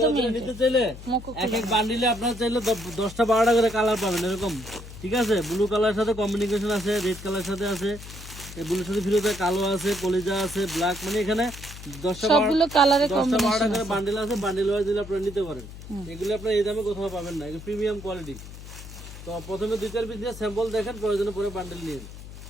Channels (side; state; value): left; noise; hum, 14 dB below the sound